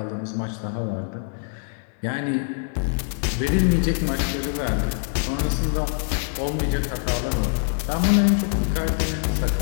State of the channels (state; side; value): silent; right; digital silence